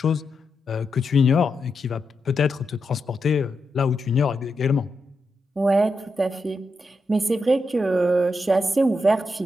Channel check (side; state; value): both; normal; correlation 0.85